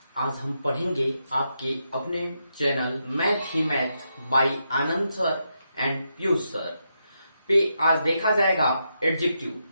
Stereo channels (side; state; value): both; inverted; correlation -0.83